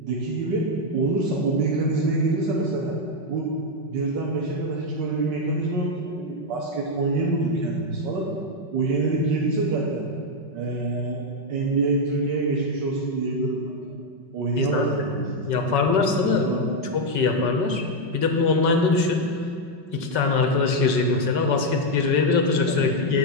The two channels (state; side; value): late; left; 5.4 ms